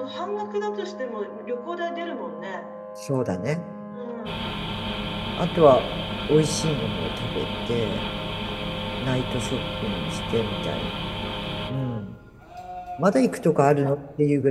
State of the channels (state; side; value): identical; both; correlation 1.00